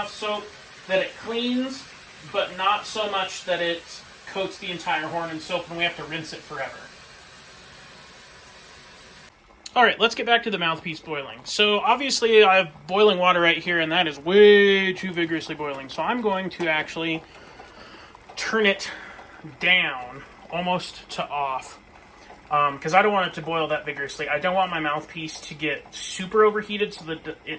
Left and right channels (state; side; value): identical; both; correlation 1.00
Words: soap that it cleans, but not so much that it coats the entire horn in soap and we have to rinse it forever. All right, let's get back to the mouthpiece boiling. So obviously I have boiling water right here, and that is way too vigorously boiling. So I'm going to actually turn it down almost to off, because I don't want it to boil that vigorously. I don't want my mouthpiece to get super overheated so that